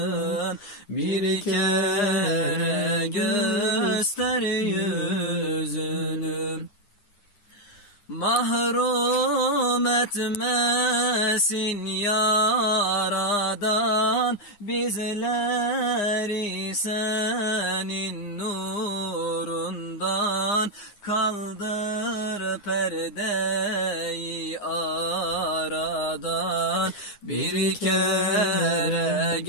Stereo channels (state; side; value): late; right; 9.8 ms